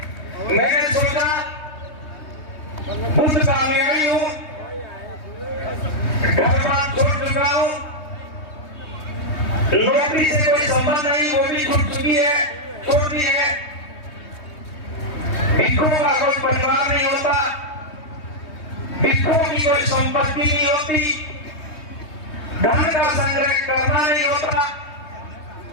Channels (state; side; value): late; right; 3.2 ms